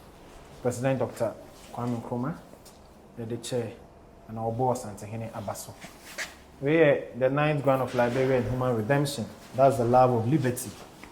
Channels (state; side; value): identical; both; correlation 1.00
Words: President Dr. Kwame Nkrumah, the chair, and our boss, Antehene Abaso. We are the 9th grant of Liberia and Human Redemption. That's the love of liberty.